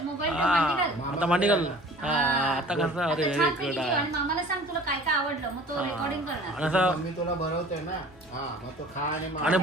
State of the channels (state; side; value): normal; both; correlation 0.46